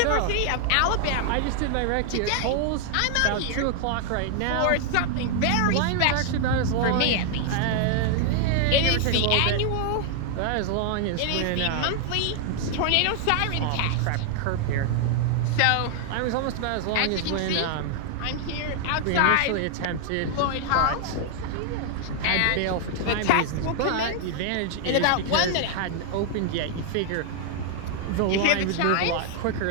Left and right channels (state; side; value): different; both; correlation 0.00